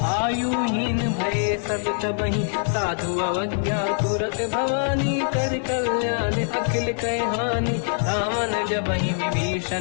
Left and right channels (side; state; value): right; silent; 63 dB below the other